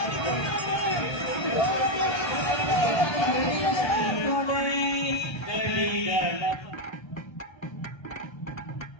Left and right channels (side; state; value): right; late; 1.3 ms